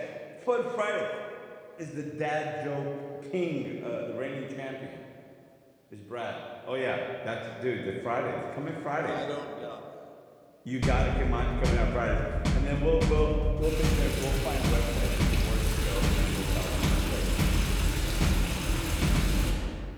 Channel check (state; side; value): identical; both; correlation 1.00